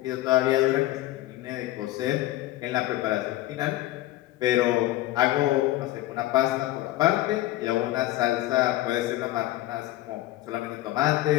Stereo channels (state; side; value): quieter; right; 15.9 dB